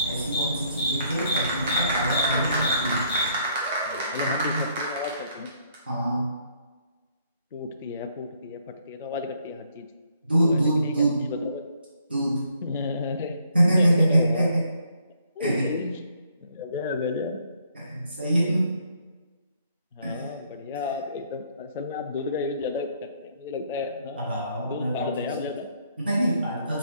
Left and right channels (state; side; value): inverted; both; correlation -0.69